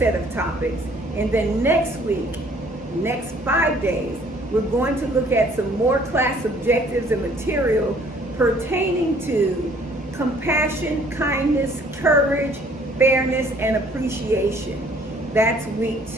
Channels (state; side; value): normal; both; correlation 0.58